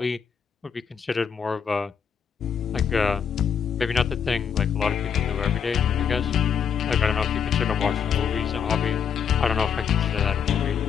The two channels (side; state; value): right; quieter; 7.3 dB